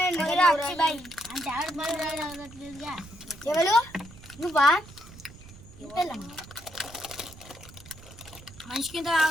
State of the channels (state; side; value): noise; right; rumble, 19 dB below the sound